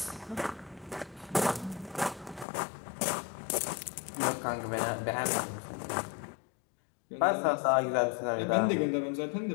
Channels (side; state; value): right; drops out; at 2.5 s